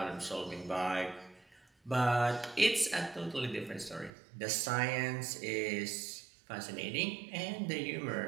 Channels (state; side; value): drops out; left; at 4.1 s